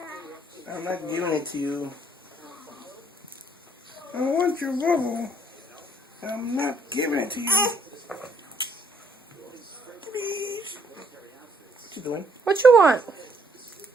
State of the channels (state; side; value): normal; both; correlation 0.68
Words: I'm not giving it to you. I want your bubble. I'm not giving it to you. Please. What you doing? What you want?